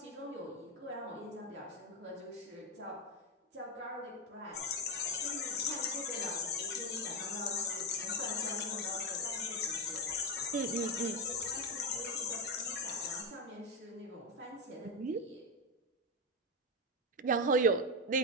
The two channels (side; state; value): both; normal; correlation 0.09